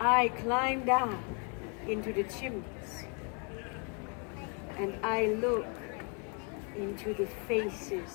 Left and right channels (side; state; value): right; quieter; 36.4 dB